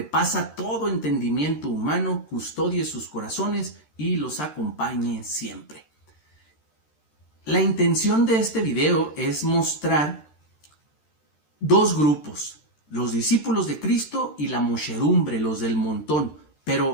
todo entendimiento humano, custodie sus corazones y los acompañe siempre. La intención de este video es mostrar dos grupos, los discípulos de Cristo y la muchedumbre, los del montón,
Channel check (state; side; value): late; right; 13 ms